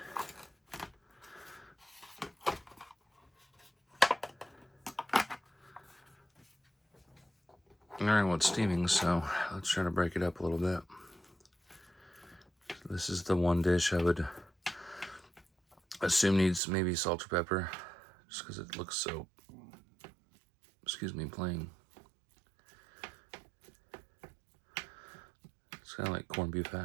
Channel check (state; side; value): drops out; left; at 16.6 s